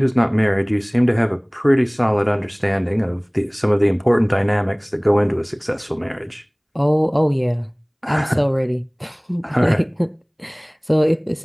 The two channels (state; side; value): identical; both; correlation 1.00